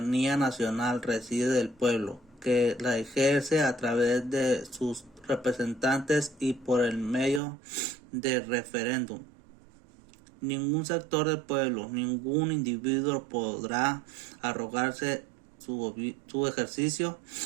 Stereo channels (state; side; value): drops out; left; at 7.4 s